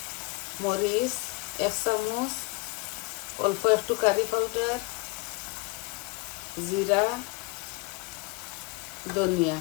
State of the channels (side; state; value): right; quieter; 26.8 dB